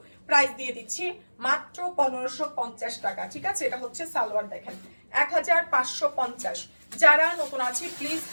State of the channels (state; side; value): inverted; both; correlation -1.00